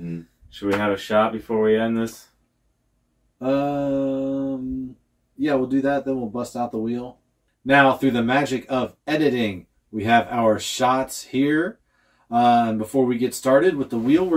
Should we have a shot before we end this? Yeah, we'll do that. Then we'll bust out the wheel. Now, through the magic of editing, we have our shots here. Before we get started with the wheel,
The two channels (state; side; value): identical; both; correlation 1.00